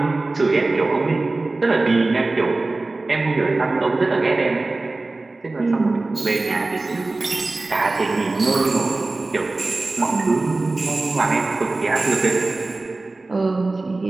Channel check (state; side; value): quieter; left; 3.2 dB